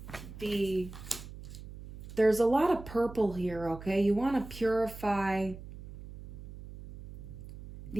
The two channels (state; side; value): noise; right; hum, 13 dB below the sound